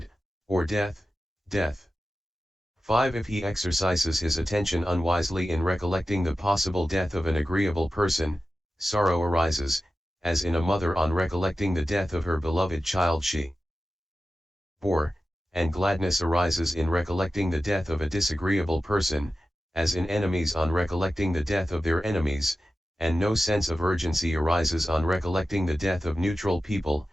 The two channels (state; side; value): normal; both; correlation 0.93